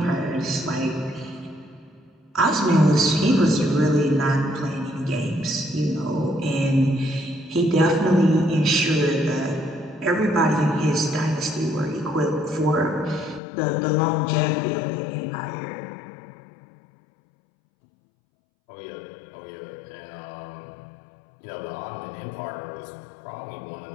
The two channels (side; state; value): right; drops out; at 13.4 s